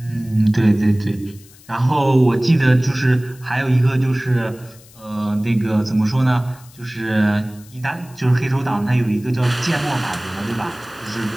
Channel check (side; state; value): left; noise; hiss, 24 dB below the sound